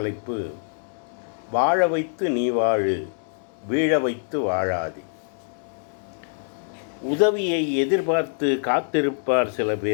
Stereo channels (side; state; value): right; silent; digital silence